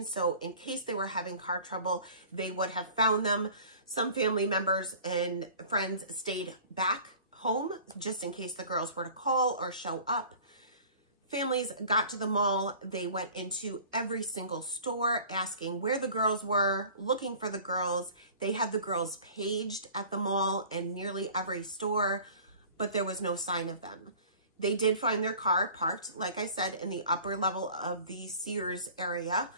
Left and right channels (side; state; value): both; inverted; correlation -0.45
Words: so in case they were having car trouble, they would have found them. Some family members and friends stayed back home just in case the girls were to call or show up. Families got to the mall. They went into every single store asking where the girls were, looking for the girls. They had the girls paged at the mall and nearly every store, but there was no sign of them. They did find their car parked, like I said, in the upper level of the Sears area.